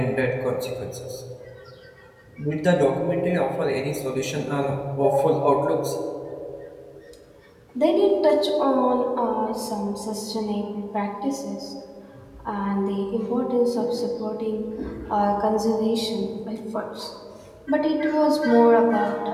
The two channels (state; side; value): identical; both; correlation 1.00